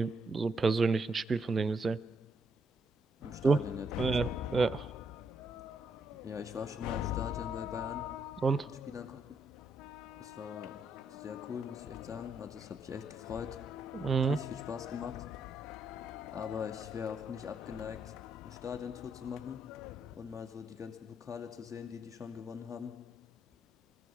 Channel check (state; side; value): normal; both; correlation 0.76